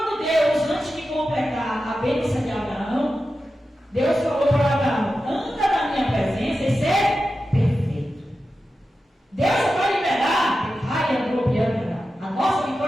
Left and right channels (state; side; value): normal; both; correlation 0.92